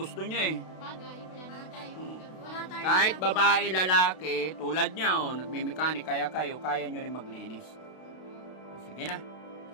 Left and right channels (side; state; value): right; late; 32 ms